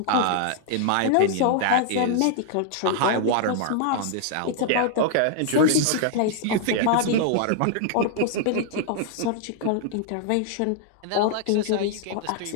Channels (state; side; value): different; both; correlation -0.01